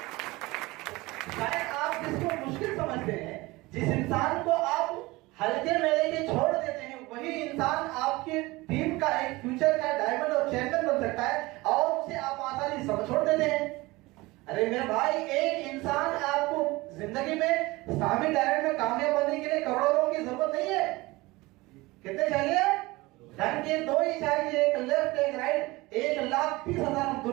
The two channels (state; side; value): quieter; left; 21.4 dB